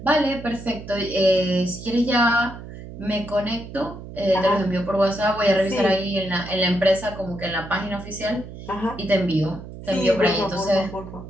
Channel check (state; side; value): noise; right; hum, 13 dB below the sound